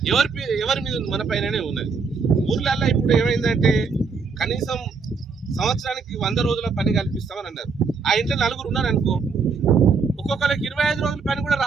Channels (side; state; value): left; quieter; 5.0 dB